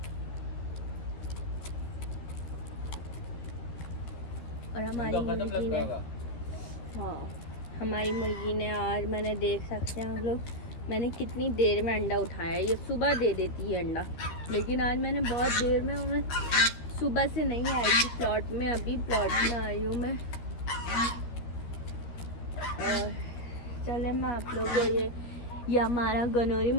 और हमारी मुर्गी ने हमारी मुर्गी ने आज मैंने देख सकते हैं हम लोग, मैंने कितनी देर में अंडा उठाया है। ये सुबह दे देती है अंडा, लेकिन आज मैंने बहुत देर में, मैं सुबह से नहीं आई थी प्लॉट में, अभी प्लॉट में आई हूँ मैं। और चले मैं आप लोगों को ये हमारा गनौरी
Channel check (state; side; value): late; right; 12 ms